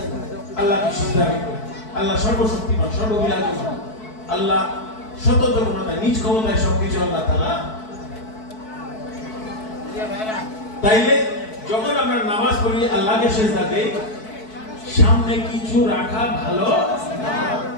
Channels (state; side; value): late; right; 4.6 ms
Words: আল্লাহকে সিজদা করব, আল্লাহ সর্বশক্তিমান, সর্ববিরাজমান, আল্লাহ স্বতন্ত্র ক্ষমতায়, নিজ ক্ষমতায় সবকিছু আল্লাহ তাআলা। তাইলে যখন আমরা নামাজ পড়ি, আল্লাহকে সিজদা দেই, সামনে কিছু রাখা ভালো না,